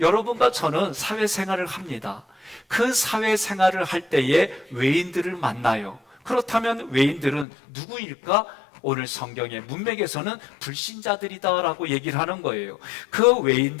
저는 사회생활을 합니다. 그 사회생활을 할 때에 외인들을 만나요. 그렇다면 외인들은 누구일까? 오늘 성경의 문맥에서는 불신자들이다라고 얘기를 하는 거예요. 그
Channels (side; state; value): right; drops out; at 7.5 s